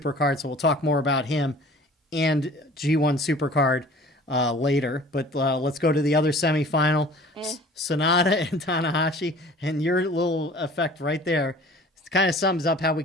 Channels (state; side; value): normal; both; correlation 0.47